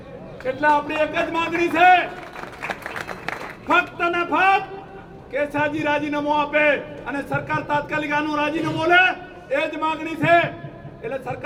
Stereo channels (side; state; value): both; identical; correlation 1.00